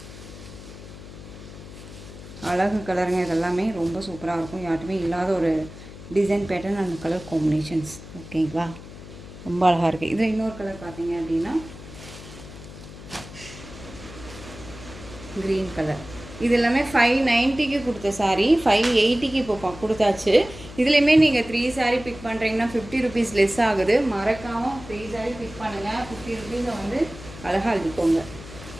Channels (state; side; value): noise; left; hum, 15 dB below the sound